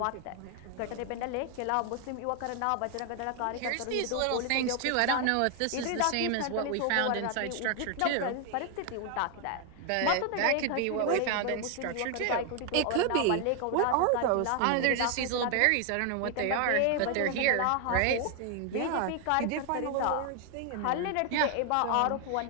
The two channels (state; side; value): different; both; correlation 0.00